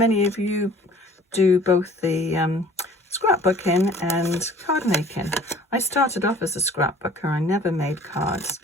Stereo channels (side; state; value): both; normal; correlation 0.50